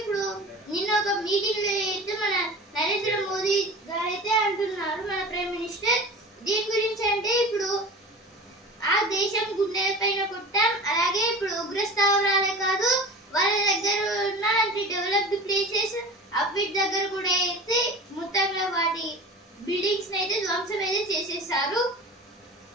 నిన్న ఒక మీటింగ్ లో అయితే మన నరేంద్ర మోదీ గారైతే అంటున్నారు, మన ప్రైమ్ మినిస్టర్, దీని గురించి అంటే ఇప్పుడు ఆ దేశం గుండె పైన కొట్టాం. అలాగే ఇప్పుడు ఉగ్ర స్థావరాలే కాదు, వాళ్ళ దగ్గర ఉన్న డెవలప్డ్ ప్లేసెస్ అవిటి దగ్గర కూడా అయితే మొత్తంగా వాటి బిల్డింగ్స్ అయితే ధ్వంసం అయితే చేసేసారు.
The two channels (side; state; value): both; normal; correlation 0.36